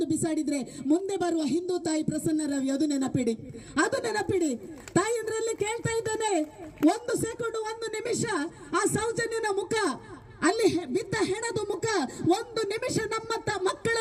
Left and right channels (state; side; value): identical; both; correlation 1.00